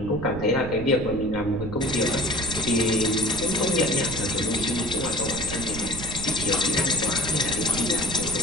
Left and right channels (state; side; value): noise; right; rumble, 9 dB below the sound